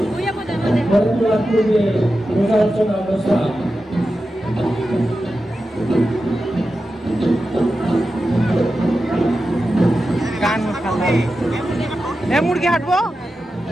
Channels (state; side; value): normal; both; correlation 0.91